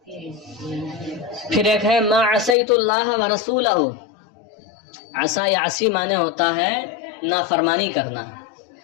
پھر ایک ہے ما عصیت اللہ ورسولہ، عصا یا عصی معنی ہوتا ہے نافرمانی کرنا،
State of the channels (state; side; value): drops out; right; at 2.6 s